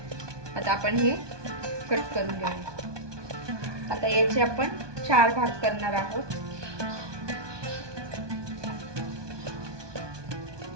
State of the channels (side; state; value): left; late; 1.2 ms